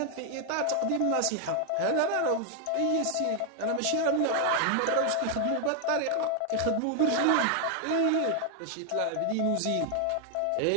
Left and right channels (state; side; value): different; both; correlation 0.00